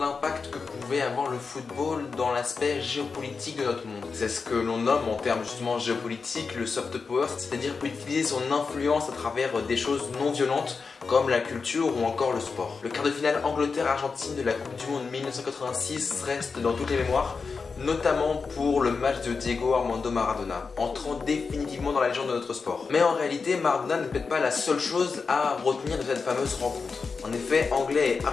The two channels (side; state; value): right; quieter; 4.9 dB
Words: que pouvait avoir le football dans l'aspect géopolitique de notre monde. C'est ce que l'on nomme en termes justement géopolitiques le soft power, c'est-à-dire utiliser son influence à travers des choses non violentes comme la culture ou encore le sport. Le quart de finale Angleterre-Argentine de la Coupe du Monde 1986 reste dans toutes les mémoires, notamment pour le match de Diego Armando Maradona, entrant définitivement dans la légende de notre sport. Mais en réalité, Maradona n'est peut-être pas la seule chose à retenir de cette fameuse rencontre. En effet, Anglais et